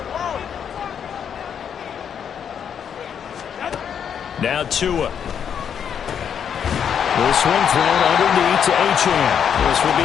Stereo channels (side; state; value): right; quieter; 8.0 dB